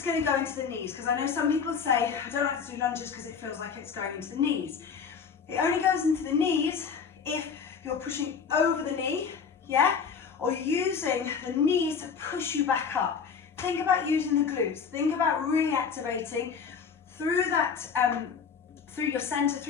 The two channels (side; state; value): right; quieter; 6.3 dB